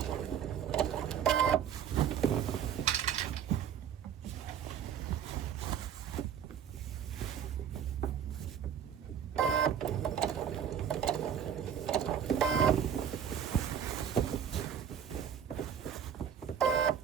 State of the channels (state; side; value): quieter; left; 8.6 dB